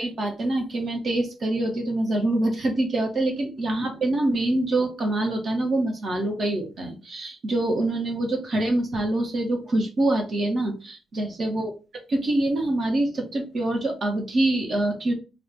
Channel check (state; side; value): normal; both; correlation 0.88